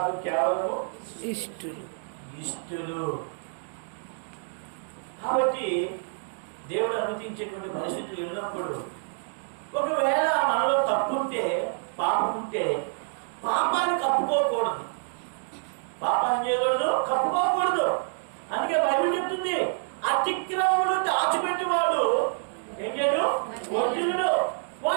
కేవలం ఇష్టులు. కాబట్టి దేవుడు అనుమతించేటువంటి పరిస్థితులు ఉన్నప్పుడు, ఒకవేళ మనలో తప్పు ఉంటే, పాపం ఉంటే, పాపాన్ని కప్పుకోకూడదు, పాపాన్ని చేయకూడదు, కప్పుకోకూడదు. అందుకే బైబిల్ చెప్తుంది, అతిక్రమములు దాచిపెట్టేవాడు ఏం చేయడు, వర్ధిల్లుడు.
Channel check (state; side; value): silent; left; digital silence